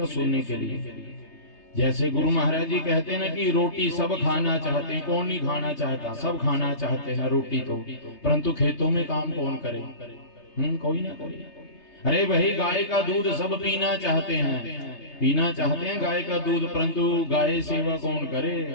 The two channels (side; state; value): right; late; 3.3 ms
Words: सुनने के लिए। जैसे गुरु महाराज जी कहते हैं ना कि रोटी सब खाना चाहते हैं। कौन नहीं खाना चाहता? सब खाना चाहते हैं रोटी तो, परंतु खेतों में काम कौन करे? कोई ना करे। अरे भाई गाय का दूध सब पीना चाहते हैं गाय का दूध, परंतु गाय सेवा कौन करे?